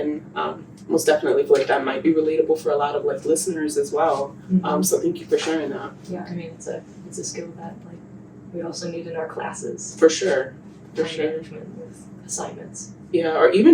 most definitely feel like that might be relatable for a lot of listeners as well. Mm-hmm. So thank you for sharing that. Yeah, I mean it's a skill that we also need in our classes. For sure. Time management with assignments. Yeah, or even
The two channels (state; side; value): identical; both; correlation 1.00